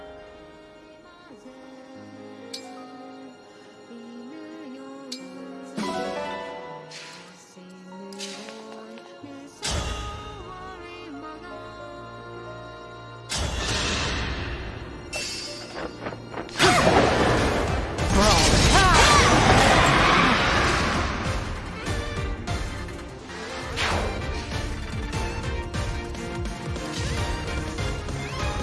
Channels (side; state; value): both; identical; correlation 1.00